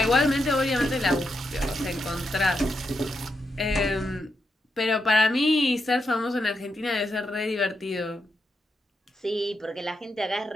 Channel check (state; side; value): normal; both; correlation 0.84